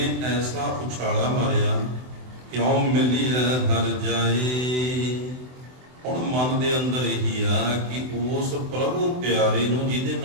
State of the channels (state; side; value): late; left; 24 ms